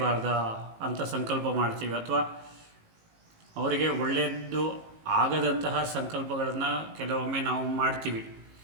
ಅಂತ ಸಂಕಲ್ಪ ಮಾಡ್ತೀವಿ. ಅಥವಾ ಅವರಿಗೆ ಒಳ್ಳೆಯದು ಆಗದಂತಹ ಸಂಕಲ್ಪಗಳನ್ನು ಕೆಲವೊಮ್ಮೆ ನಾವು ಮಾಡ್ತೀವಿ.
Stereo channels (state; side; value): late; left; 18 ms